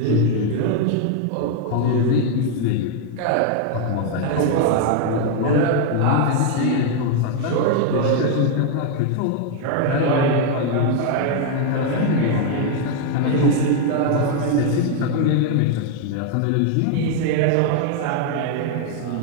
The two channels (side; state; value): both; different; correlation 0.00